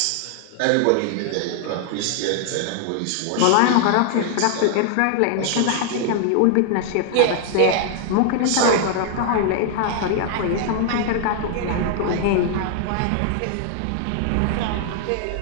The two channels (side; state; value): both; different; correlation -0.01